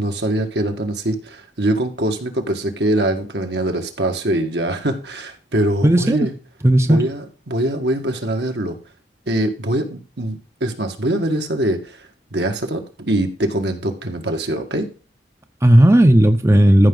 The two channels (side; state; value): both; normal; correlation 0.78